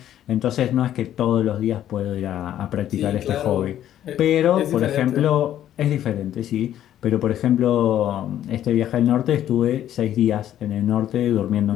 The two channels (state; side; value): quieter; right; 11.5 dB